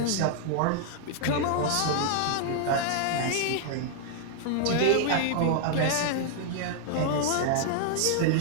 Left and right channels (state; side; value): different; both; correlation -0.01